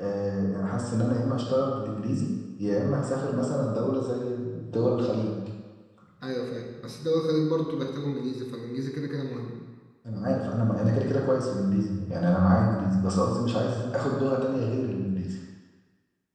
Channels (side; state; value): both; identical; correlation 1.00